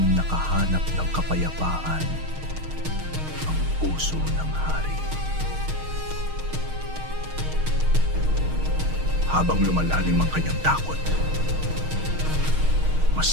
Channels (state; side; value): late; left; 6.4 ms